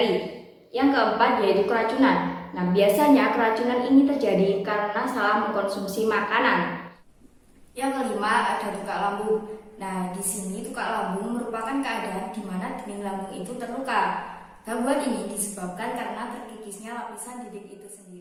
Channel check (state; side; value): identical; both; correlation 1.00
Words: Yang keempat yaitu keracunan. Nah, biasanya keracunan ini terjadi karena salah mengkonsumsi makanan. Yang kelima ada tukak lambung. Nah, di sini tukak lambung merupakan keadaan di mana dinding lambung itu terluka. Gangguan ini disebabkan karena terkikisnya lapisan dinding itu